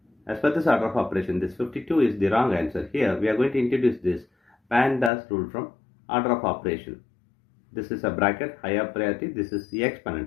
As per this order of operation, this 52 is the wrong answer. Here we are going to introduce this PEMDAS rule from order of operation. This is a bracket, higher priority. This is the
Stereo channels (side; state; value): right; drops out; at 5.1 s